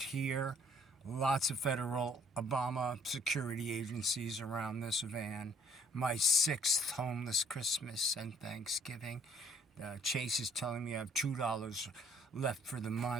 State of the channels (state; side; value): normal; both; correlation 0.61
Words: here, lots of federal Obama security agencies around this van, my 6th homeless Christmas and Thanksgiving. Chase is telling me I have $2 left for the